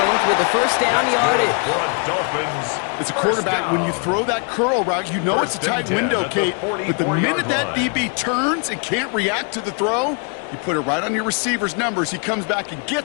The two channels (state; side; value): quieter; right; 39.1 dB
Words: with a first down yardage. As a quarterback, when you throw that curl route, you know it's a tight window, Kate. But the minute that DB turns and can't react to the throw, you put it right on your receiver's numbers. He comes back and